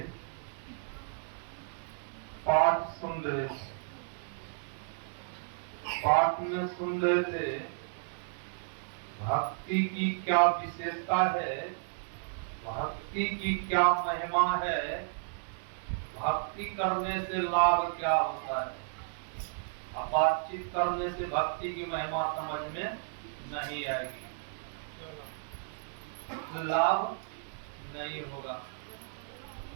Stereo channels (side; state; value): left; silent; digital silence